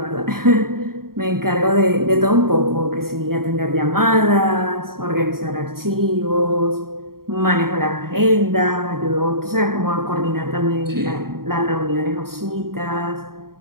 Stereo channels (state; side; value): late; left; 0.93 ms